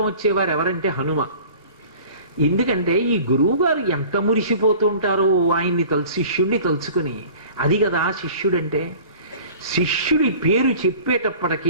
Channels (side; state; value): both; inverted; correlation -0.44